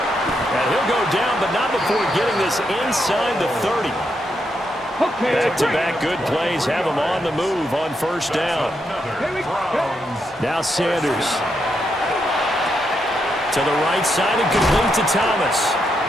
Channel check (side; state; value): both; normal; correlation 0.81